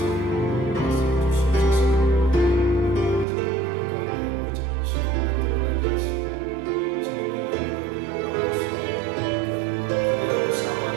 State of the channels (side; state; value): left; drops out; at 3.2 s